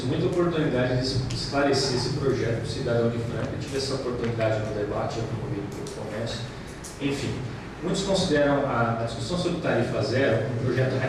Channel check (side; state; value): both; identical; correlation 1.00